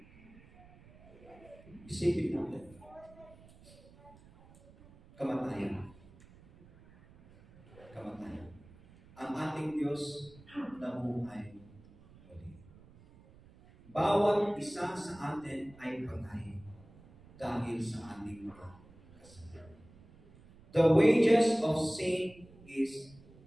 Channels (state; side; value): noise; right; rumble, 23 dB below the sound